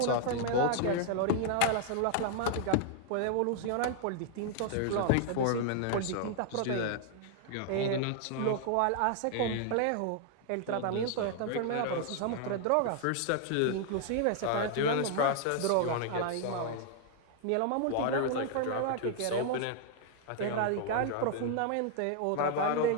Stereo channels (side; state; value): both; different; correlation 0.00